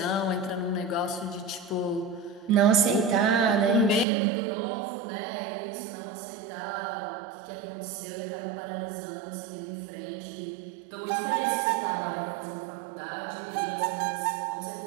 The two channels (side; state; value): left; drops out; at 4.0 s